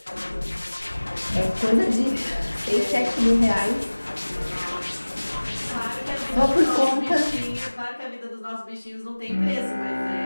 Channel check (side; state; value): both; inverted; correlation -1.00